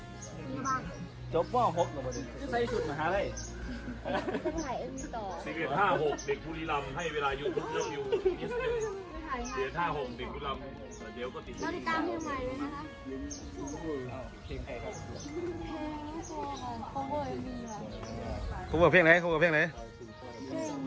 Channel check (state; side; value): identical; both; correlation 1.00